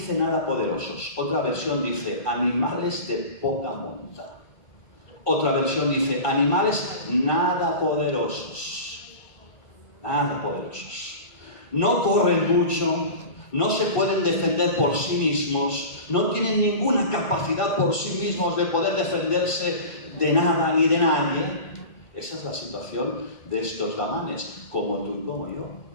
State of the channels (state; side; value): late; right; 1.2 ms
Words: nada poderosos. Otra versión dice animales de poca monta. Otra versión dice animales nada poderosos. Nada poderosos. No corren mucho, no se pueden defender por sí mismos, no tienen ninguna capacidad por sí mismos de poder defenderse de nada ni de nadie. Esa es la situación de estos damanes, como tú y como yo.